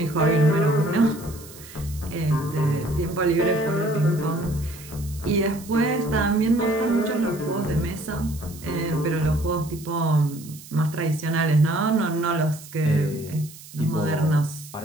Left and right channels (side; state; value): right; noise; hiss, 18 dB below the sound